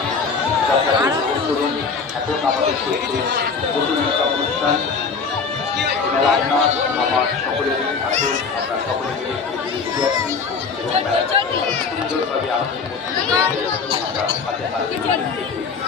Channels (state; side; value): quieter; right; 5.1 dB